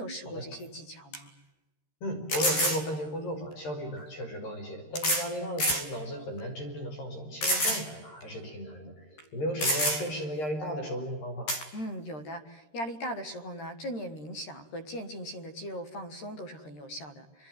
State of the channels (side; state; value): right; late; 13 ms